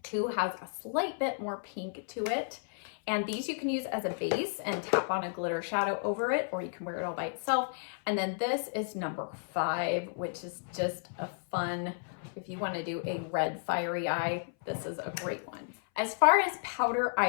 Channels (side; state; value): right; silent; 56 dB below the other